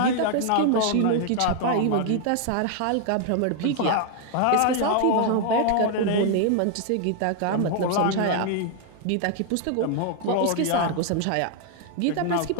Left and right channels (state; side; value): different; both; correlation 0.00